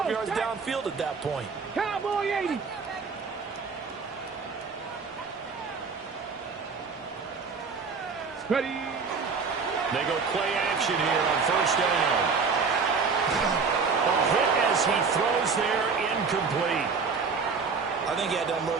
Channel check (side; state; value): left; quieter; 5.1 dB